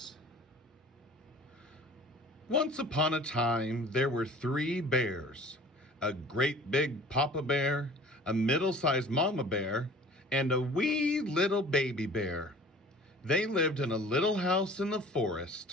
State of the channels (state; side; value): normal; both; correlation 0.46